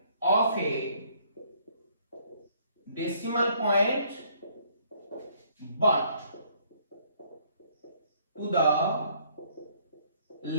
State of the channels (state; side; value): inverted; both; correlation -0.64